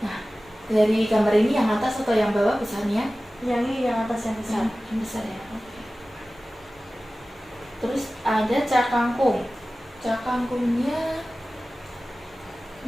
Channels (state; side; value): normal; both; correlation 0.96